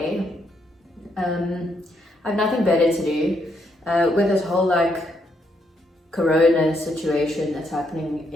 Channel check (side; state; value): both; normal; correlation 0.76